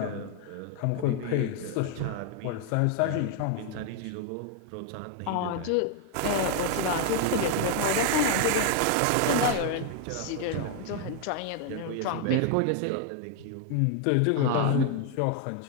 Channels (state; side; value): different; both; correlation 0.00